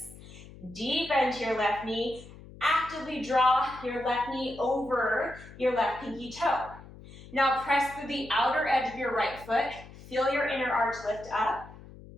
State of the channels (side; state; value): left; noise; hum, 18 dB below the sound